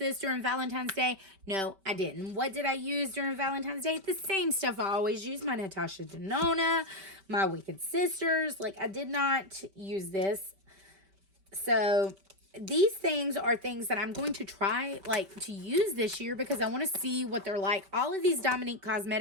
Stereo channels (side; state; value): left; late; 5.2 ms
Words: during Valentine's Day. No, I didn't. What did I use during Valentine's Day? The same stuff I always use. My Natasha Denona, my Wicked Sisters. Like, I did not use this. So these things are things that I'm going to try like to use this year because I want to see what they're like. All of these Dominique